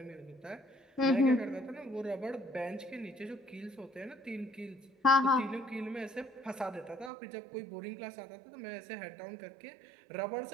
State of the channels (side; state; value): left; drops out; at 7.1 s